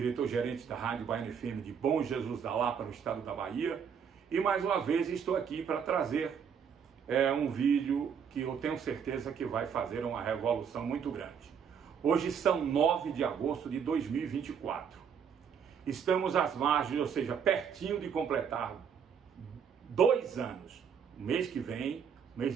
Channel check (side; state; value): left; quieter; 7.3 dB